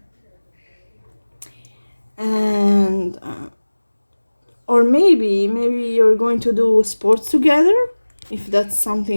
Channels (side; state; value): both; inverted; correlation -1.00